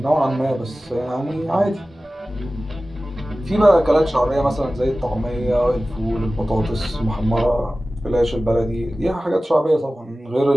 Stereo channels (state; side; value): normal; both; correlation 0.96